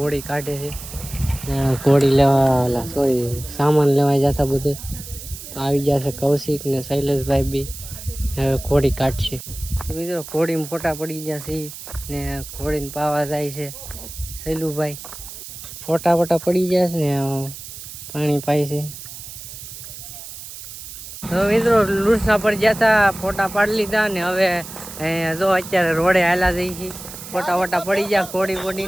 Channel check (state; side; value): noise; right; hiss, 12 dB below the sound